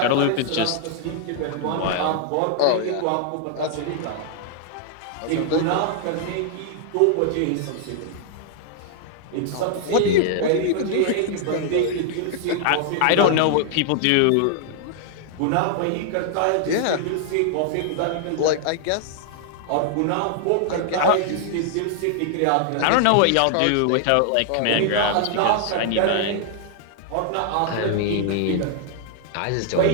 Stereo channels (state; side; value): different; both; correlation -0.01